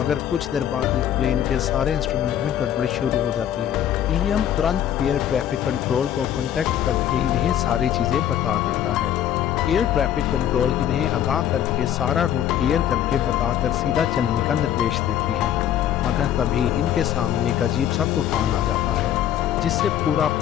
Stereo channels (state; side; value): quieter; right; 10.6 dB